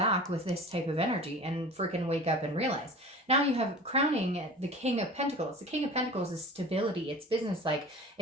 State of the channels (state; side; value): normal; both; correlation 0.39